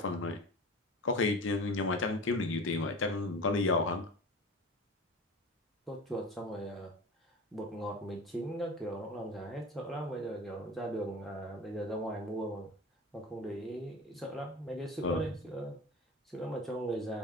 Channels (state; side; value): normal; both; correlation 0.33